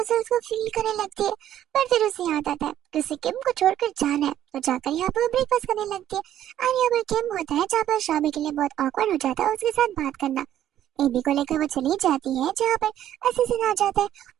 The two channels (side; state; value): left; quieter; 11.6 dB